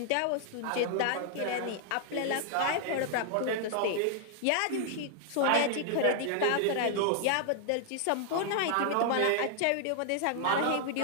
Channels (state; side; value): different; both; correlation 0.00